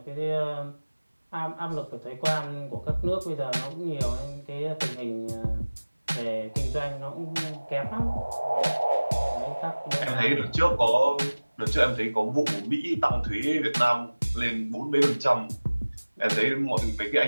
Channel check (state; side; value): inverted; both; correlation -1.00